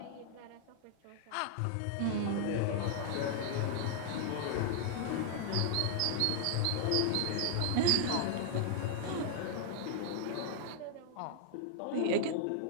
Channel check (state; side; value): different; both; correlation -0.01